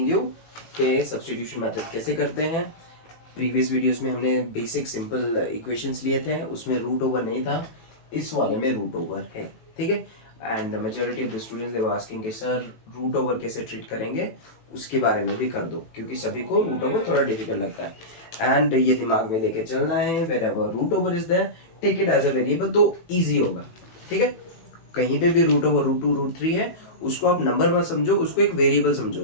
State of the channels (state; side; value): late; right; 18 ms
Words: you कि substitution method कैसे करते हैं. Previous videos में हमने बेसिक सिंपल इक्वेशंस लिए थे, उसमें रूट ओवर नहीं था, इस वाले में रूट ओवर है. ठीक है. And majority of the students they were asking कि सर रूट ओवर कैसे ट्रीट करेंगे, उसके बारे में भी कर दो, क्योंकि सभी को रूट ओवर थोड़ा डिफिकल्ट लगता है. एंड ये दिमाग में लेके चलना है, wherever root over is there take it as a variable, तो ईजी होगा. ठीक है. कहीं पे भी रूट ओवर रूट 2 रूट 3 है, उसको आप नंबर मत समझो, उसको एक वेरिएबल समझो,